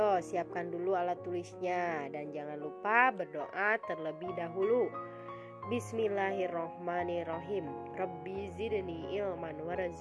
siapkan dulu alat tulisnya dan jangan lupa berdoa terlebih dahulu. Bismillahirrohmanirrohim. Rabbi zidni ilman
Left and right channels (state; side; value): identical; both; correlation 1.00